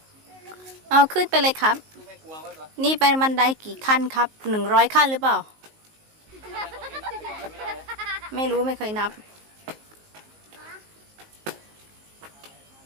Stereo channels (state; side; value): late; left; 19 ms